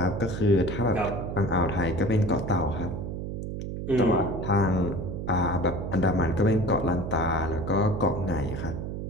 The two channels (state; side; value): noise; right; hum, 5 dB below the sound